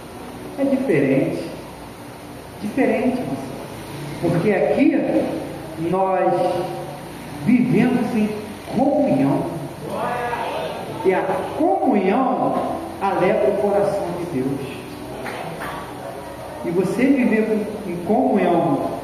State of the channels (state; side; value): identical; both; correlation 1.00